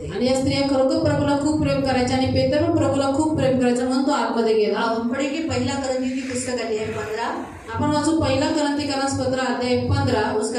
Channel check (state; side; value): identical; both; correlation 1.00